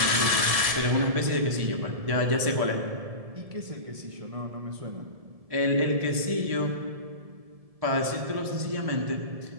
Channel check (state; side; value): late; left; 1.7 ms